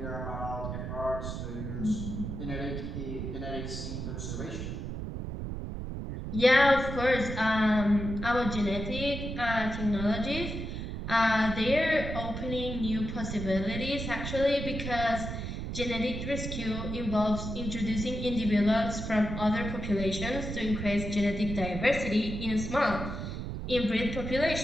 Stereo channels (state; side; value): noise; right; rumble, 5 dB below the sound